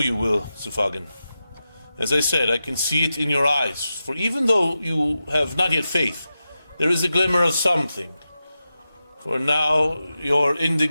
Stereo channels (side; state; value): both; inverted; correlation -0.91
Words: will, Sufagan. As I said, I can see it in your eyes, for even though you have not yet faith, there is a glimmer of something. For now, your